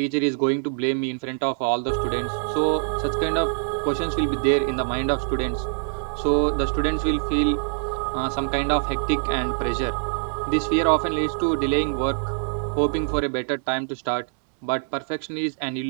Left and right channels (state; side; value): silent; left; digital silence